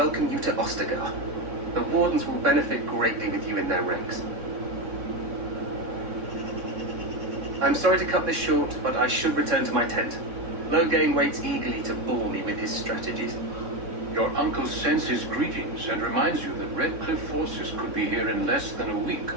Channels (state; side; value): late; left; 3.6 ms